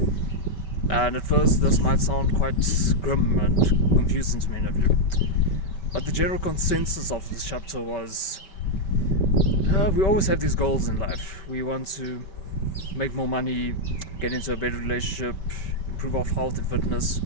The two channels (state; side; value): late; right; 5.2 ms